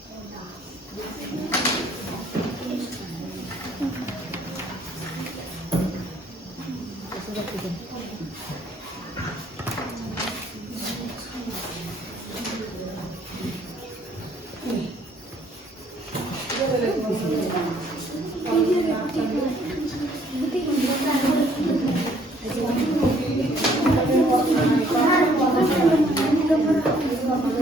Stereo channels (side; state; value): both; normal; correlation 0.62